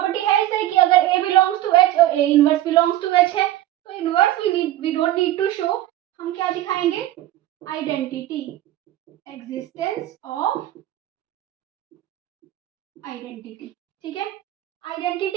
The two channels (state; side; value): quieter; left; 14.2 dB